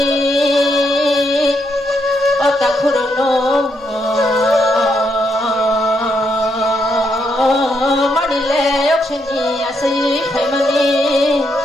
অতা খুরনো মানিলে অক্সনি আসি ফাইমানি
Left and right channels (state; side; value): normal; both; correlation 0.78